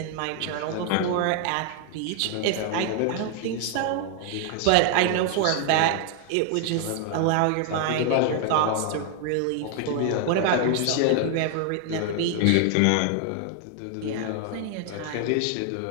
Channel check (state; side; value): different; both; correlation 0.00